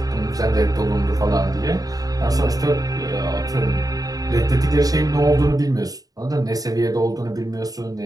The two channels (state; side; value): late; left; 0.18 ms